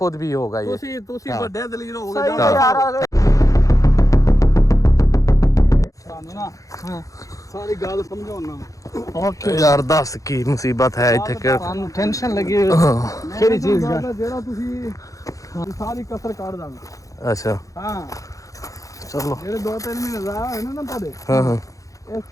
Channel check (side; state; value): right; late; 0.16 ms